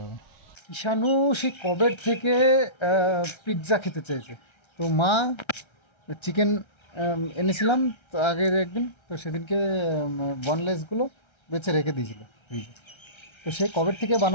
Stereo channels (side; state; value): right; late; 1.3 ms